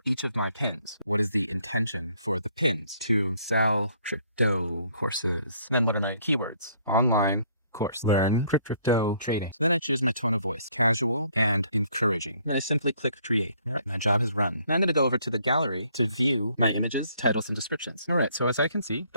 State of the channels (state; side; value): inverted; both; correlation -0.65